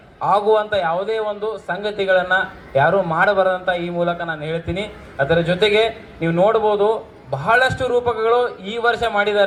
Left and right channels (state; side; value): identical; both; correlation 1.00